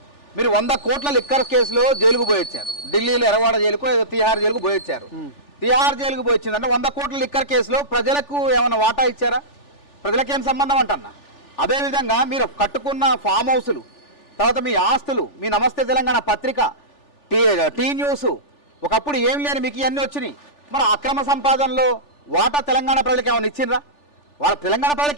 మీరు 100 కోట్ల లిక్కర్ కేసులో జైలుకు పోయొచ్చారు. ఢిల్లీలో ఎర్రవాడ జైలుకు ఏదో తిహార్ జైలుకు పోయొచ్చారు. తిహార్ జైలుకు పోయొచ్చిందంటే 100 కోట్ల లిక్కర్ కేసులో ప్రజలకు ఏమైనా వాటా ఇచ్చారా? ప్రజలకేం సంబంధం అంటన్నా. అదేవిధంగా మీరు కట్టుకున్న ఫామ్ హౌసులు, తర్వాత మీ ఆస్తులు, మీ నమస్తే తెలంగాణ పత్రిక, టీ న్యూస్, ఒకప్పుడు ఏం లేని మీకు ఇవన్నీ వచ్చినాయి. మరి అక్రమ సంపాదనలో వాటా తెలంగాణ ప్రజలకు ఏమైనా ఇచ్చిండ్రా? వాళ్ళ తెలంగాణ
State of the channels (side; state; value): right; late; 3.4 ms